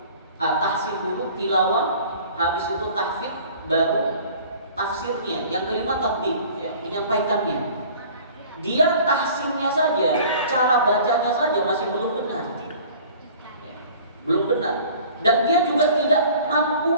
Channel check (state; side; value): inverted; both; correlation -0.47